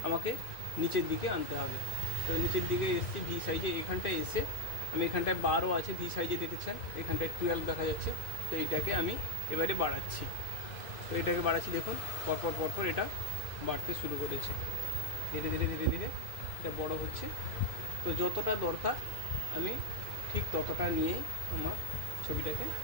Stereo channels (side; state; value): right; late; 2.5 ms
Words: আমাকে নিচের দিকে আনতে হবে। তো নিচের দিকে এসছি ভি সাইজে, এখানটায় এসে আমি এখানটায় 12 আছে ভি সাইজে দেখেছেন, এখানটায় 12 দেখা যাচ্ছে। তো এটাকে আমি এবারে বাড়াচ্ছি। তো এটাকে বাড়াচ্ছি, দেখুন পরপর এটা বাড়তে শুরু করেছে, ধীরে ধীরে ধীরে ধীরে এটা বড় হচ্ছে। তো যতটা দরকার আমি ঠিক ততটা নিয়েই আমার ছবিটাকে